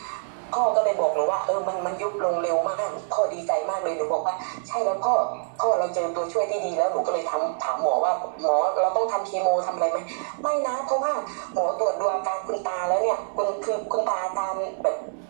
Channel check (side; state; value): left; silent; digital silence